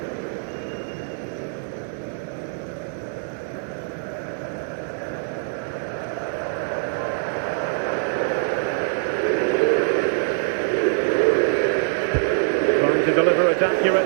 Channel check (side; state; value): left; silent; digital silence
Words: Trying to deliver it